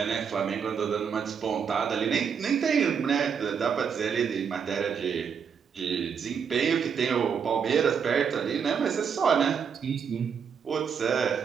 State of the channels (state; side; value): quieter; left; 6.9 dB